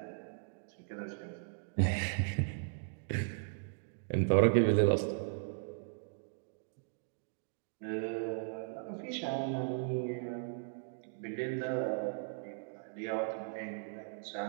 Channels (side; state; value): left; silent; digital silence